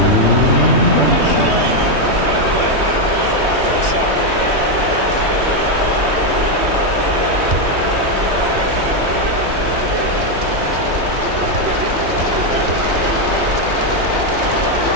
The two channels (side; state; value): left; late; 3.2 ms